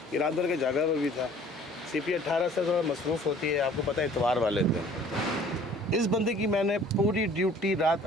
ये रात भर के जगह पर भी था। CP 18 से थोड़ा मसरूफ़ होती है, आपको पता है इतवार वाले दिन। इस बंदे की मैंने पूरी ड्यूटी रात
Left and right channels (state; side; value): normal; both; correlation 0.52